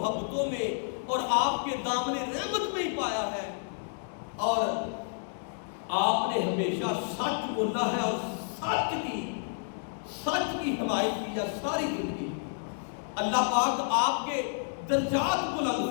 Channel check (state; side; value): silent; right; digital silence